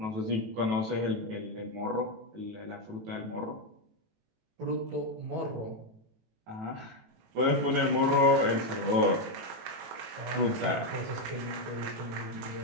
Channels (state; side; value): late; left; 18 ms